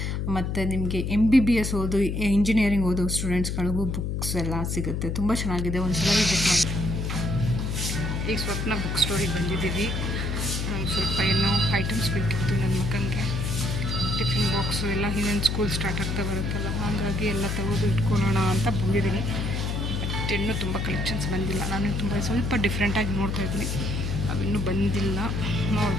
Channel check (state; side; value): noise; left; hum, 1 dB below the sound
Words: ಮತ್ತು ನಿಮಗೆ MBBS ಓದು, ಇಂಜಿನಿಯರಿಂಗ್ ಓದೋ ಸ್ಟೂಡೆಂಟ್ಸ್ಗಳಿಗೂ ಬುಕ್ಸ್ ಎಲ್ಲ ಸಿಗುತ್ತೆ. ತುಂಬ ಚೆನ್ನಾಗಿದೆ, ಒಂದು ಸಲ ವಿಸಿಟ್ ಮಾಡಿ. ಈಗ ಸ್ವಪ್ನ ಬುಕ್ ಸ್ಟೋರಿಗೆ ಬಂದಿದ್ದೀವಿ. ಸ್ವಲ್ಪ ಏನೋ ಐಟಮ್ಸ್ ಬೇಕಿತ್ತು ನನ್ನ ಮಗನಿಗೆ. ಟಿಫಿನ್ ಬಾಕ್ಸು ಎಲ್ಲ ಇನ್ನೇನು ಸ್ಕೂಲ್ ಸ್ಟಾರ್ಟ್ ಆಗ್ತಾ ಬರುತ್ತಲ್ಲ, ಹಾಗಾಗಿ ಎಲ್ಲ ತೆಗೆದು ಇಟ್ಕೊಳ್ಳೋಣ ಅಂತ ಬಂದಿದ್ದೀನಿ. ಬಟ್ ಇನ್ನೂ ತುಂಬ ಕಲೆಕ್ಷನ್ಸ್ ಬಂದಿಲ್ಲ. ನಾನು ಸ್ವಲ್ಪ ಡಿಫ್ರೆಂಟಾಗಿ ನೋಡ್ತಾಯಿದ್ದೀನಿ, ಅವಿನ್ನೂ ಬಂದಿಲ್ಲ,